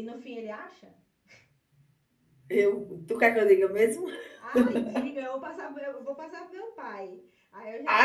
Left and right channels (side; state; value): both; identical; correlation 1.00